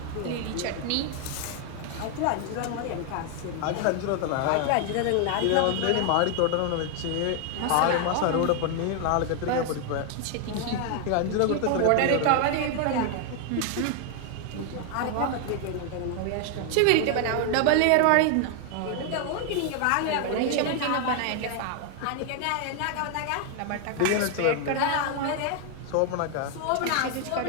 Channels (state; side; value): different; both; correlation 0.00